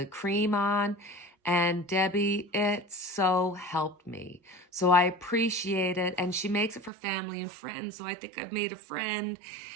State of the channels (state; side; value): drops out; left; at 6.9 s